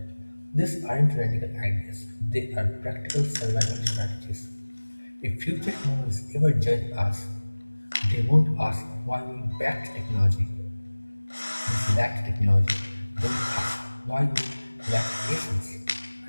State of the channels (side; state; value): both; inverted; correlation -1.00